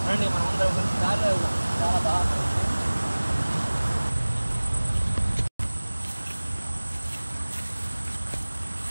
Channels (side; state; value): both; inverted; correlation -1.00